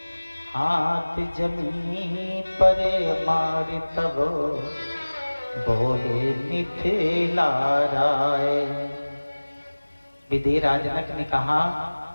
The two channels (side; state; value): both; inverted; correlation -1.00